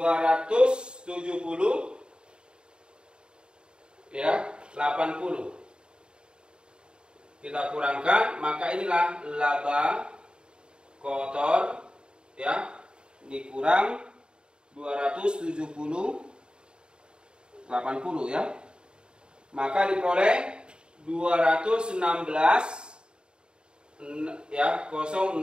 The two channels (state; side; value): late; left; 0.050 ms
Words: ya, 80. Kita kurangkan, maka inilah laba kotor, ya, dikurang 270 80, ya. Maka diperoleh 216, ya,